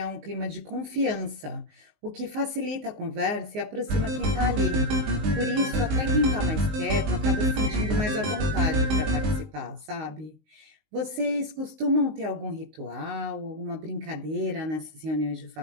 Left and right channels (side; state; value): left; late; 19 ms